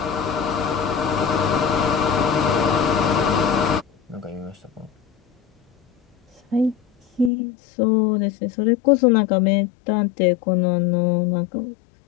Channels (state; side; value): drops out; right; at 7.3 s